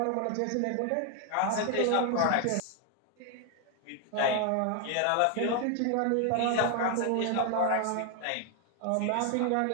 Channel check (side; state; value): both; different; correlation 0.01